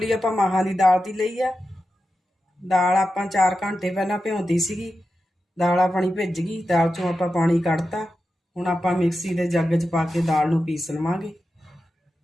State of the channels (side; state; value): both; normal; correlation 0.91